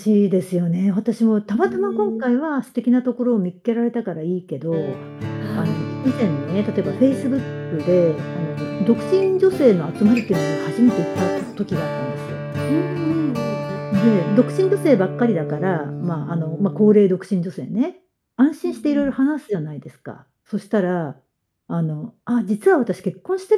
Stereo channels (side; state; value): both; identical; correlation 1.00